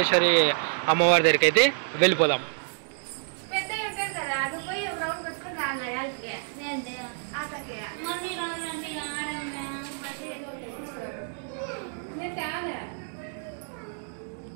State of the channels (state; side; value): silent; left; 59 dB below the other